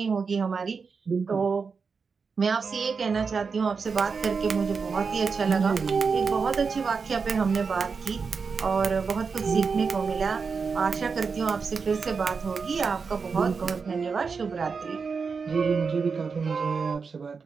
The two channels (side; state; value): left; quieter; 5.2 dB